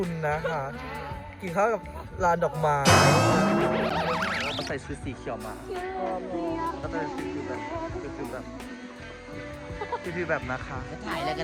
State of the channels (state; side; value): identical; both; correlation 1.00